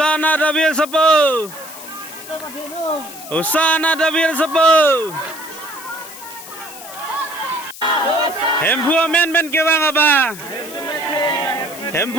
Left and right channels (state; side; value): noise; left; hiss, 15 dB below the sound